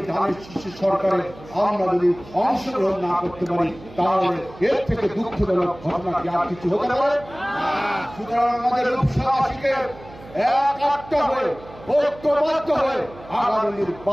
ধানের শীষের সরকারে আমরা যদি অংশগ্রহণ না করতে পারি, তাহলে এর থেকে দুঃখজনক ঘটনা কি আর কিছু হতে পারে? সুতরাং আমাদের রূপসাবাসীকে এক আটটা হয়ে, ঐক্যবদ্ধ হয়ে আগামী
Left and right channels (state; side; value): noise; right; hum, 19 dB below the sound